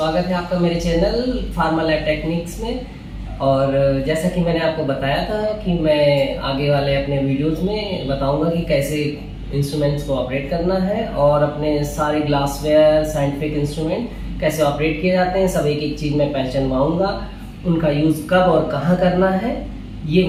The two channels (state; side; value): identical; both; correlation 1.00